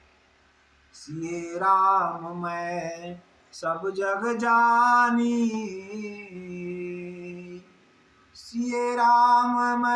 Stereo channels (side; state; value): both; identical; correlation 1.00